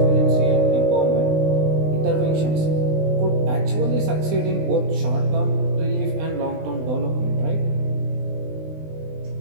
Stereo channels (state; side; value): late; left; 20 ms